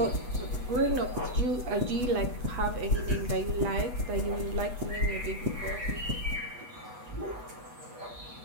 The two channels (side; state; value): left; late; 8.2 ms